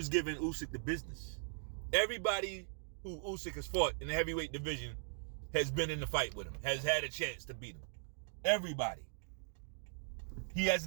giving Usyk the business. Everybody who Usyk has fought in the heavyweight division has been in the fight with him, has had a chance to beat him. Everybody. He has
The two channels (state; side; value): silent; left; digital silence